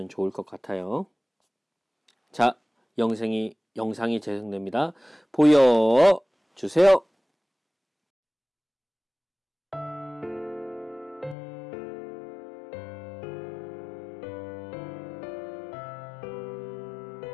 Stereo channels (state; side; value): drops out; right; at 11.4 s